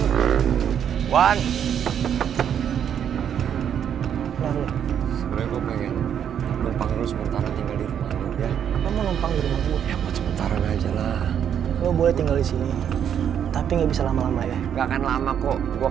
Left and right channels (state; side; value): quieter; left; 8.8 dB